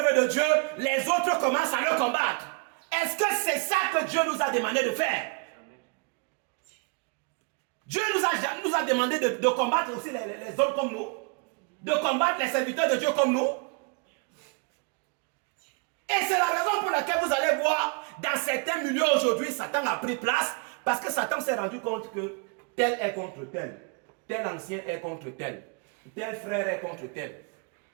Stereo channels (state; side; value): quieter; left; 32.8 dB